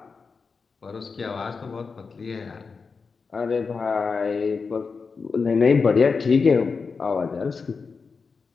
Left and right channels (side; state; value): right; quieter; 4.9 dB